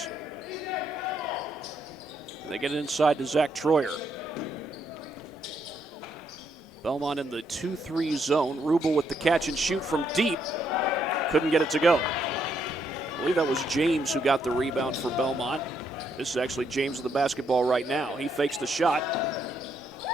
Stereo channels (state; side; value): normal; both; correlation 0.75